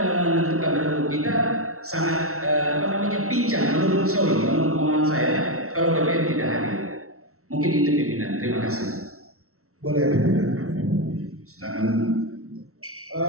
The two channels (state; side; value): late; left; 0.63 ms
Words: menentukan rembuk kita sangat pincang menurut pemahaman saya kalau BPN tidak hadir. Mungkin itu pimpinan. Terima kasih. Boleh pimpinan. Silakan.